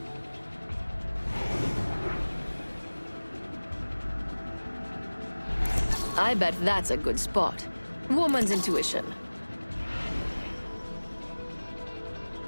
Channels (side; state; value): both; inverted; correlation -1.00